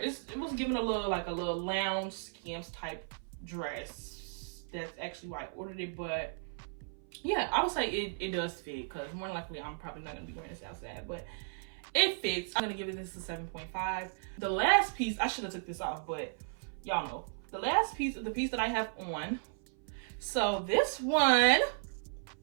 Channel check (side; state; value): left; silent; 54 dB below the other